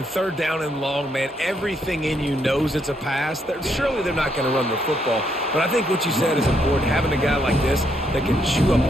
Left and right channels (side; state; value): both; normal; correlation 0.75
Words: 3rd down and long, man, everything in you knows it's a pass. Surely they're not going to run the football. But I think what you said is important, having a guy like this that can chew